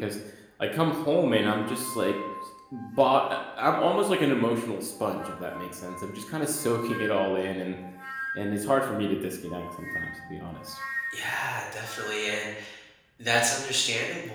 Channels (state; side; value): identical; both; correlation 1.00